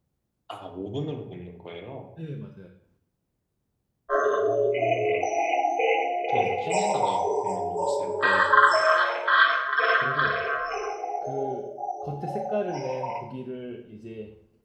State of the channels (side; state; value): both; identical; correlation 1.00